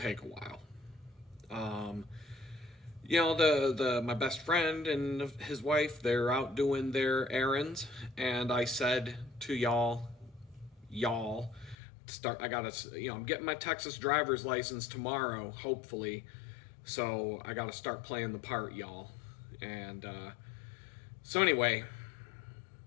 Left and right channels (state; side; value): drops out; right; at 11.8 s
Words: take a while. My best friend and his wife, they're out doing their errands, and I said to y'all, I'm getting my Texas driver's license tomorrow, hopefully, so I gotta start playing the part, y'all. And so anyway,